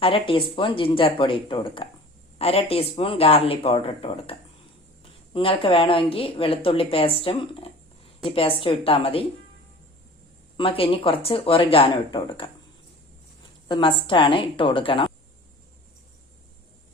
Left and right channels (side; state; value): both; normal; correlation 0.43